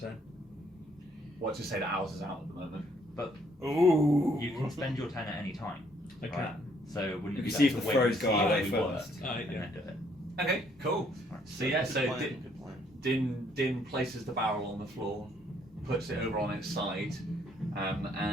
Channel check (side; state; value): both; normal; correlation 0.66